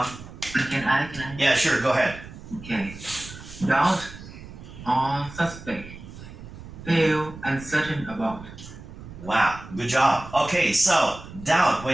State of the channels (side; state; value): right; noise; rumble, 15 dB below the sound